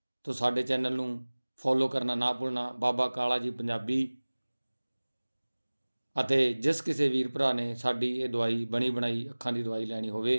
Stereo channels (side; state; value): both; inverted; correlation -1.00